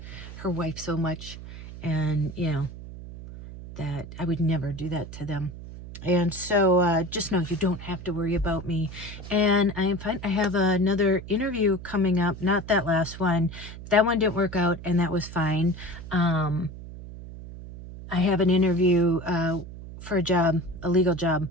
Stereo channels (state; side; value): noise; right; hum, 13 dB below the sound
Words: her wife so much. And, you know, that I would never do that to them. And so just know you don't have to worry about me. And I am fine. I have another interview coming up. Not that last one. That one didn't work out, and that was fine. I have an interview for a job, a legal job